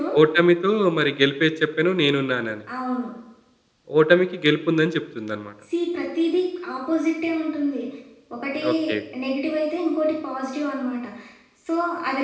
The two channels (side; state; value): both; identical; correlation 1.00